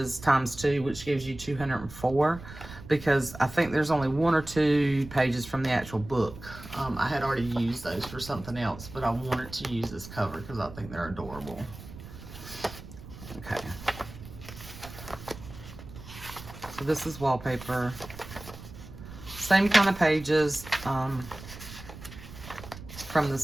times 2, which gives you 204, because I think there's only 1 or 2 pages from the actual book. I had already used those for something else, but I wanted to use this cover because I think they're adorable. Okay. So this is wallpaper. Same kind of pages from the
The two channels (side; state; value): right; noise; rumble, 14 dB below the sound